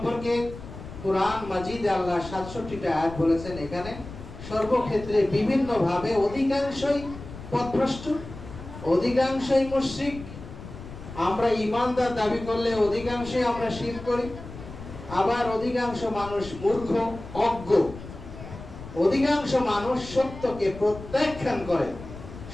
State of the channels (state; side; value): noise; left; rumble, 13 dB below the sound